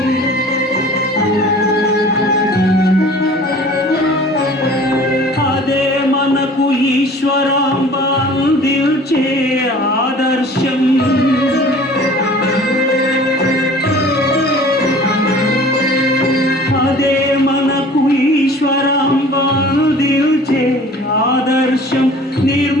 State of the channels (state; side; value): normal; both; correlation 0.46